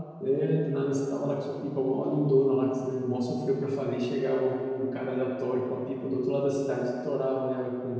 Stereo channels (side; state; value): both; identical; correlation 1.00